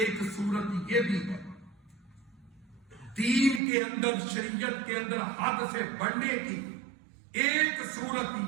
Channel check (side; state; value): left; drops out; at 3.6 s